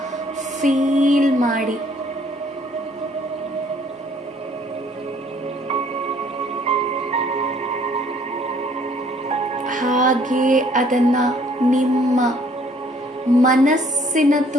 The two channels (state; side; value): normal; both; correlation 0.61